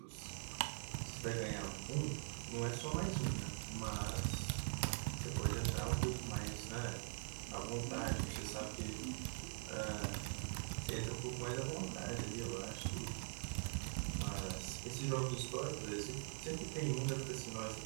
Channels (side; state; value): left; silent; digital silence